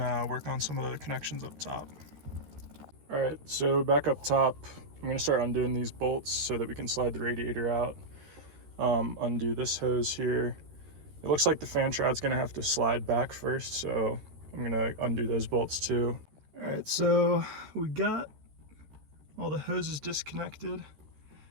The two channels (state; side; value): late; left; 13 ms